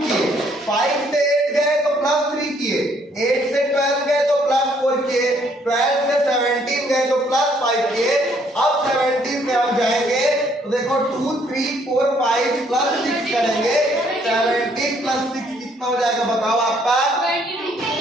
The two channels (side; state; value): both; normal; correlation 0.66